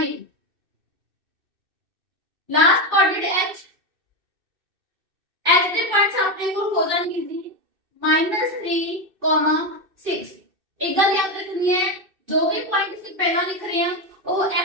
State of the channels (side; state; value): left; late; 2.6 ms